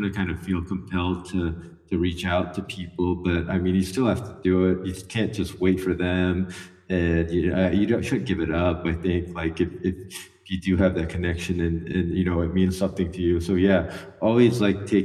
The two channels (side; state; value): both; identical; correlation 1.00